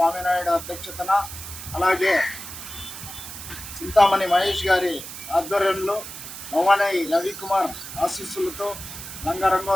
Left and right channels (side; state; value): right; noise; hiss, 11 dB below the sound